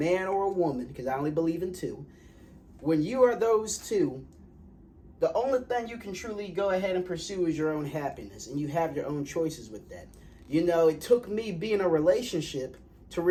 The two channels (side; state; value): both; identical; correlation 1.00